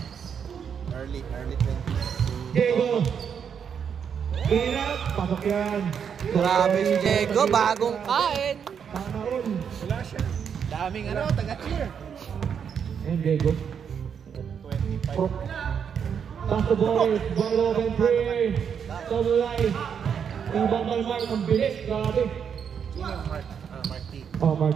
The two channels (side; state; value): left; quieter; 7.4 dB